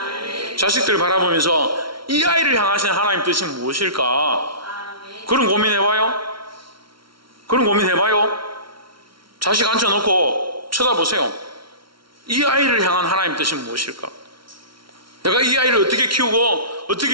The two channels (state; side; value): late; left; 0.74 ms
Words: 자식들을 바라보면서 이 아이를 향하신 하나님 뜻이 무엇일까? 그런 고민해봐요. 그런 고민해봐요. 자식 앉혀놓고 쳐다보세요. 이 아이를 향한 하나님 뜻이 무엇일까? 내가 이 아이를 어떻게 키우고